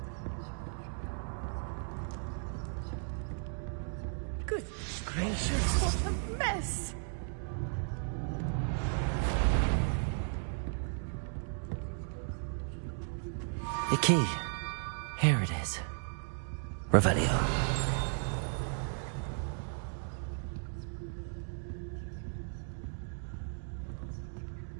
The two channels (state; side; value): silent; left; 54 dB below the other